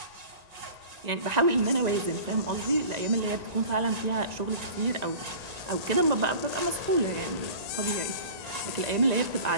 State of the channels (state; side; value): late; left; 1.9 ms